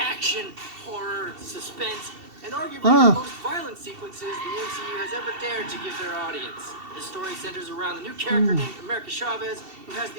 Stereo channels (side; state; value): left; late; 2.7 ms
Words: horror, suspense, and arguably the most violent sequences the MCU has ever dared to give their audience. The story centers around the new character named America Chavez, who has